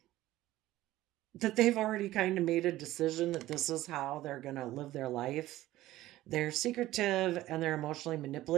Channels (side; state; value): left; quieter; 15.8 dB